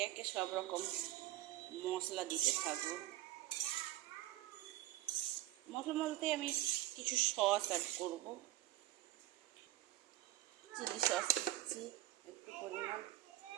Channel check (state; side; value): quieter; left; 15.3 dB